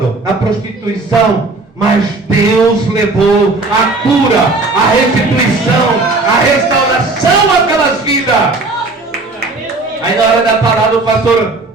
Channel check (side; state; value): left; quieter; 3.4 dB